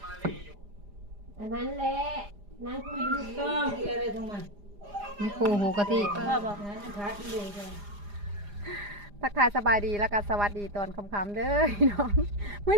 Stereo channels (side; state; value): left; late; 4.9 ms